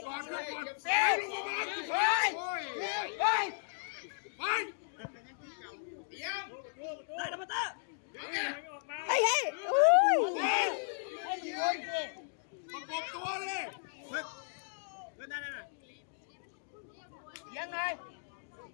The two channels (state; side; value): silent; right; digital silence